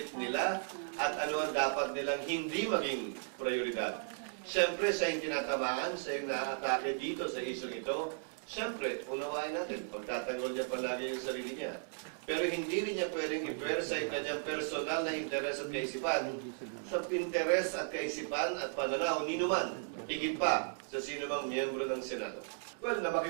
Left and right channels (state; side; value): silent; left; digital silence